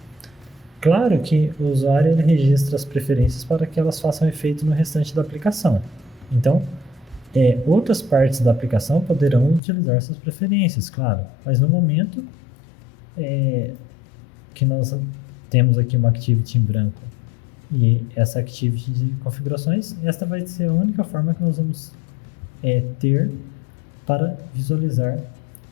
Claro que o usuário ele registra as preferências para que elas façam efeito no restante da aplicação. Então, outras partes da aplicação poderão utilizar essas preferências, claro, mas no momento que nós temos aqui uma activity em branco e essa activity de configurações, esta vai ser a única forma que nós vamos ter para visualizar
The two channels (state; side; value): drops out; right; at 9.6 s